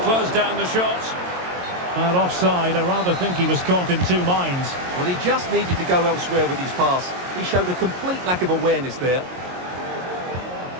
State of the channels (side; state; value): left; late; 22 ms